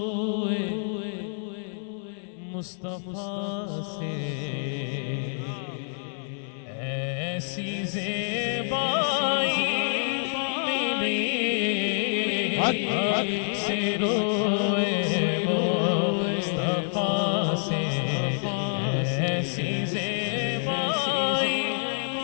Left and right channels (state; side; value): silent; right; 60 dB below the other